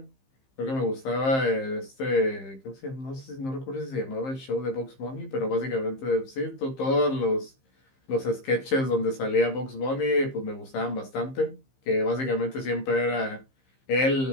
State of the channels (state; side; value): late; right; 15 ms